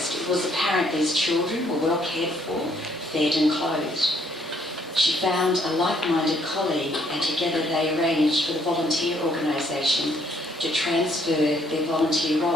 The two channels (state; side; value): normal; both; correlation 0.67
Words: it was apparent these children were well cared for, fed and clothed. She found a like-minded colleague, and together they arranged for the volunteer organisation to transfer their volunteer